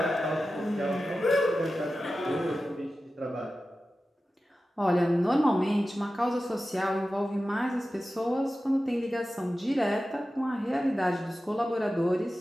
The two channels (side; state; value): both; normal; correlation 0.94